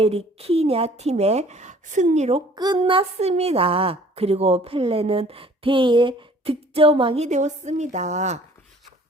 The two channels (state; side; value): normal; both; correlation 0.53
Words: 팀의 승리로 끝났습니다. 그리고 펠레는 대회 득점왕이 되었습니다.